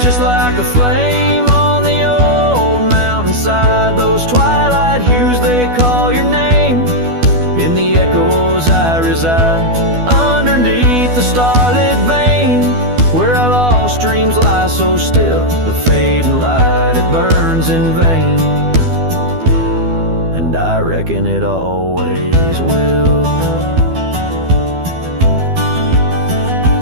just like a flame on the old mountainside. Those twilight hues, they call your name. In the echoes I reside, underneath the starlit vein, where our lost dreams lie so still. The fading light, it burns in vain, and I reckon it always will.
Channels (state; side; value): late; left; 12 ms